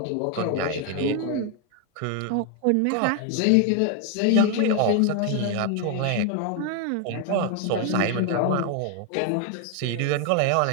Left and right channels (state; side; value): different; both; correlation 0.01